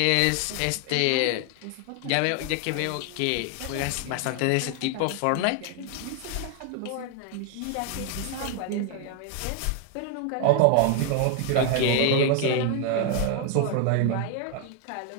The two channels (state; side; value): different; both; correlation 0.01